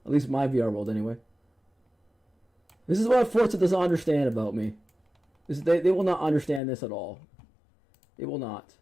least my VR world, anyway. This is what Forza doesn't understand about me. They will not understand this at all. They will not.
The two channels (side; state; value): right; drops out; at 6.6 s